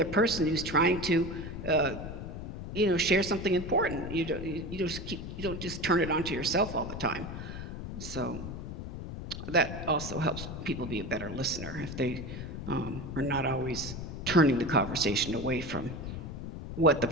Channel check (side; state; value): left; noise; rumble, 8 dB below the sound